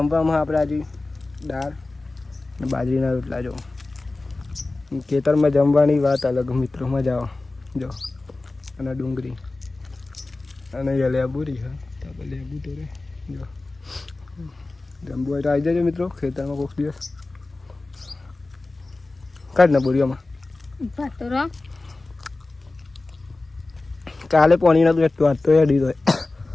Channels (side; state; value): right; quieter; 3.2 dB